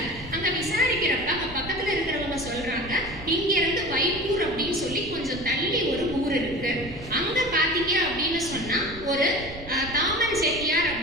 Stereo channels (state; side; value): noise; right; rumble, 15 dB below the sound